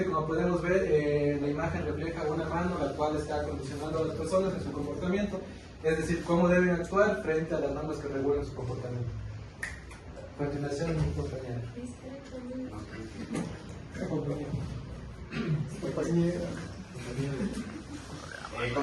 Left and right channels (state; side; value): identical; both; correlation 1.00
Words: como podemos ver, la imagen refleja una mano la cual está condicionando a las personas en su comportamiento, es decir, cómo deben actuar frente a las normas que regulan su comportamiento. A continuación, mi compañera.